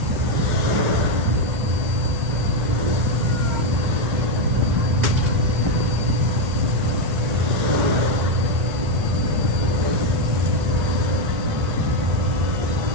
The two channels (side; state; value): left; late; 1.8 ms